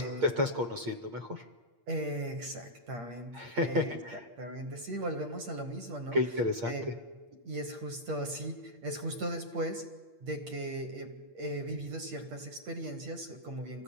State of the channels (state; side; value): late; left; 8.6 ms